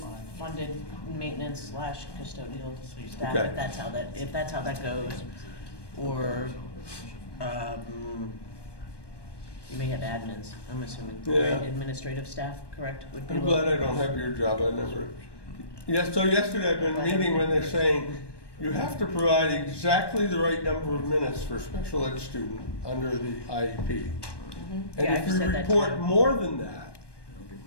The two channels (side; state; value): right; late; 1.2 ms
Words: funded maintenance slash custodial staff, Okay. if that's how that goes, or, you may have admins, I'm assuming, Yeah. right? Administrative staff, correct? Would be I'm glad I don't have your job, I never. Yes, so yesterday I've been meeting when they're saying, you have to provide exactly the right number of minutes for a special ed student under the IEP. And Yeah, if I've you said that report too. more than that,